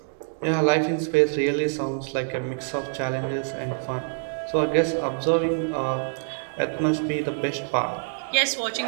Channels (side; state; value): left; silent; digital silence